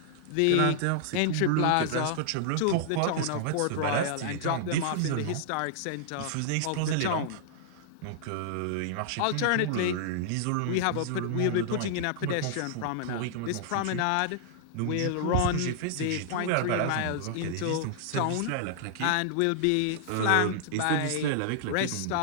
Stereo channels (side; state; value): both; different; correlation -0.01